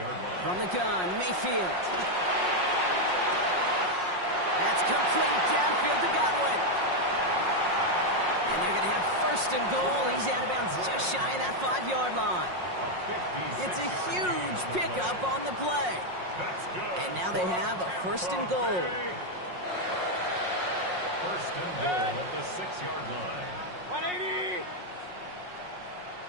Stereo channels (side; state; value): left; late; 5.5 ms